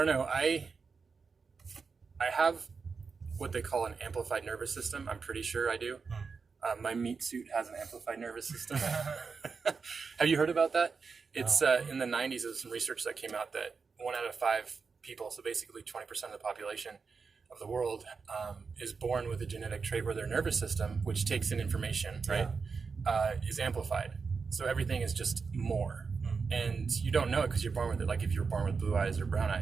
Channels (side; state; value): left; quieter; 5.1 dB